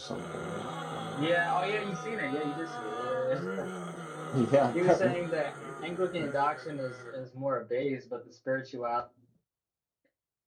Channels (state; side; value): identical; both; correlation 1.00